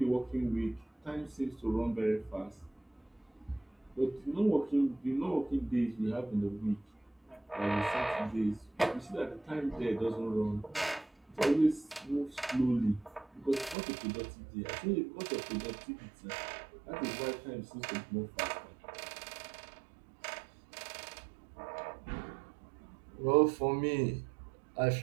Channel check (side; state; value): left; drops out; at 13.8 s